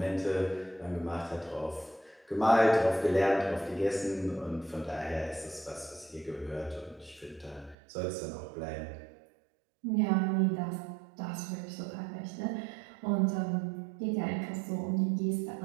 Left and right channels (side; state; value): left; drops out; at 7.8 s